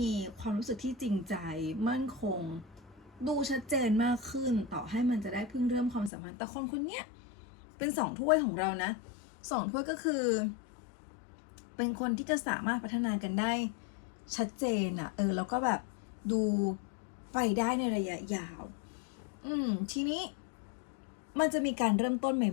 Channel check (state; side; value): drops out; right; at 6.1 s